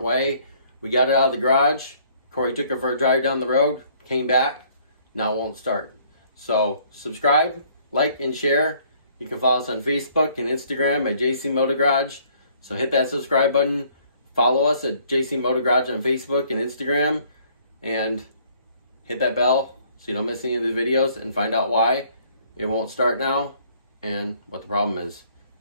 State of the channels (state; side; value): inverted; both; correlation -0.61